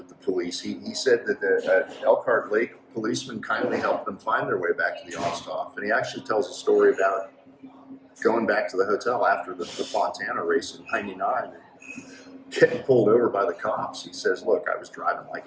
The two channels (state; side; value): identical; both; correlation 1.00